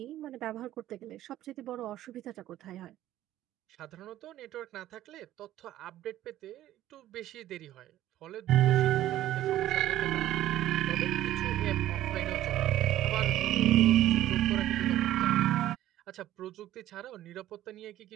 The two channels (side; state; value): left; quieter; 13.7 dB